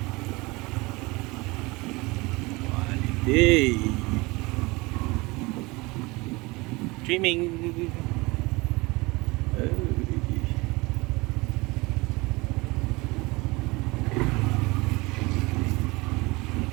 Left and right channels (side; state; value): left; quieter; 24.0 dB